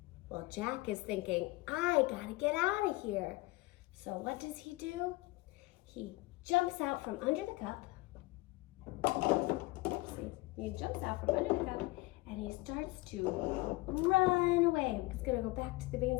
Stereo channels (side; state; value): right; quieter; 21.6 dB